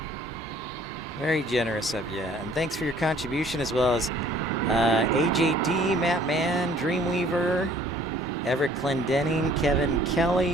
Very generous of you. And thanks for your contribution, as well as AJD, Matt Mann, Dreamweaver, Everett Clendenning, Kevin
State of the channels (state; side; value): normal; both; correlation 0.56